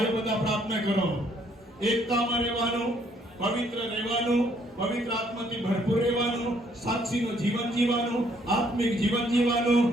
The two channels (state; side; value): normal; both; correlation 0.66